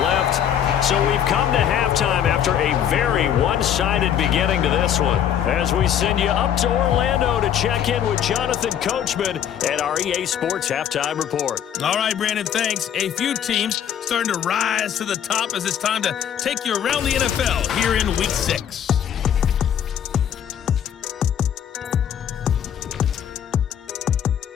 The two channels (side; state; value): right; quieter; 9.5 dB